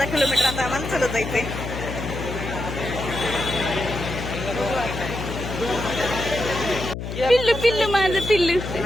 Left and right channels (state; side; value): noise; left; hum, 6 dB below the sound